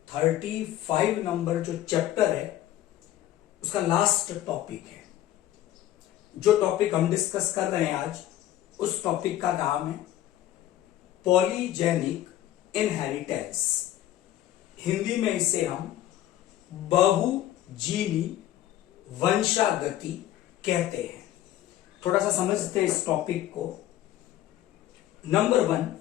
35 नंबर जो चैप्टर है उसका लास्ट टॉपिक है। जो टॉपिक हम डिस्कस कर रहे हैं आज, उस टॉपिक का नाम है पॉलीजेनिक इनहेरिटेंस। हिंदी में इसे हम बहुजीनी वंशागति कहते हैं। थोड़ा सा समझते हैं इस टॉपिक को। नंबर 1,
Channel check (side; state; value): right; quieter; 13.1 dB